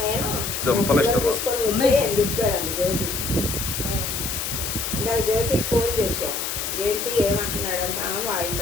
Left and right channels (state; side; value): noise; left; hiss, 3 dB below the sound